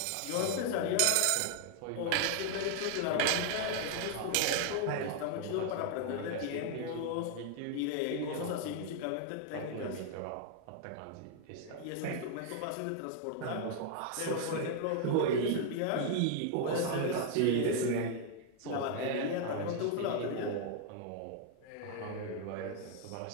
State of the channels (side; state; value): both; different; correlation 0.00